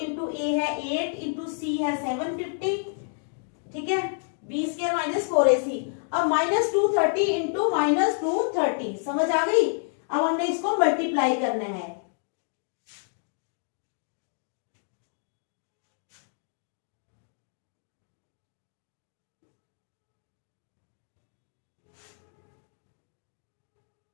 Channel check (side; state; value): right; silent; digital silence